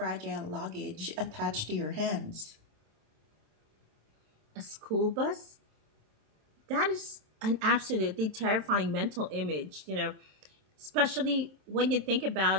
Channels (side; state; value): left; late; 27 ms